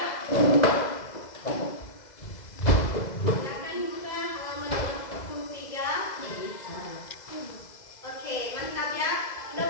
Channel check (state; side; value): late; right; 2.0 ms